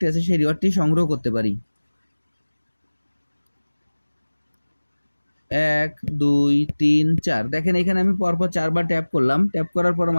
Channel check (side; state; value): both; inverted; correlation -1.00